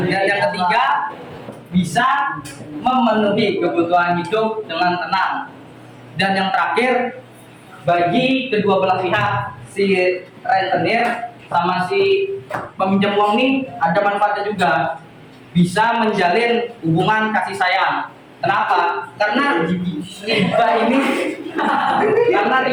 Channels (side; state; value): both; identical; correlation 1.00